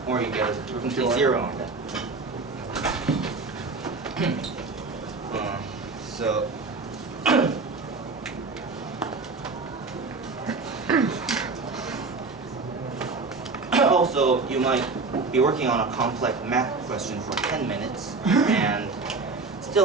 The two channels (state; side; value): quieter; left; 4.0 dB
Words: or you get a complete zero on that. So also, you might be working on a complex math question for 10 minutes and